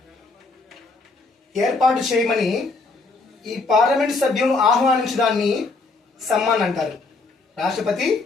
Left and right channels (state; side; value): quieter; right; 3.8 dB